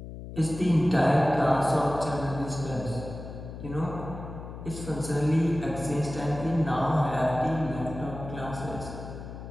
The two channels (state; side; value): noise; left; hum, 11 dB below the sound